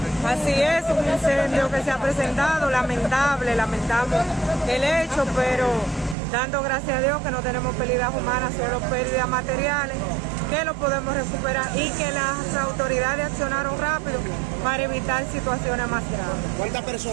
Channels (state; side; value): drops out; left; at 6.2 s